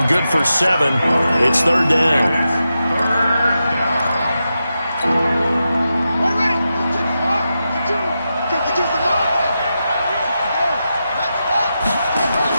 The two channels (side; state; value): both; inverted; correlation -0.89